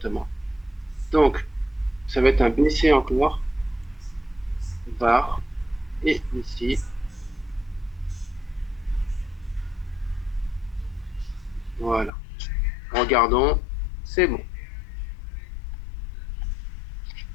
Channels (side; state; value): right; drops out; at 12.1 s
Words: Donc, ça va être un BC encore, var, et ici, voilà. Regardons, c'est bon.